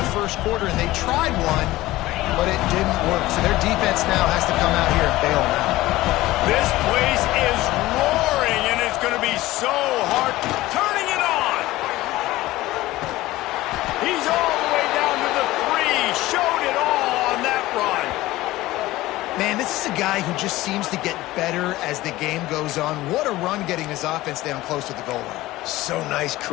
first quarter, and they tried one, but it didn't work. So their defense now has to come out here and bail them out. This place is roaring, and it's going to be so hard. Turning it on. He's all the way down to the 3. Showed it all on that run. Man, this is a guy who just seems to get better as the game goes on. What a run getting his offense down close to the goal line. So nice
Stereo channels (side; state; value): right; quieter; 17.5 dB